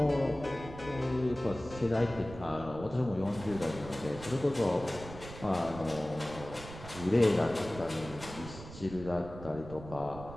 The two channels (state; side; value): noise; right; rumble, 13 dB below the sound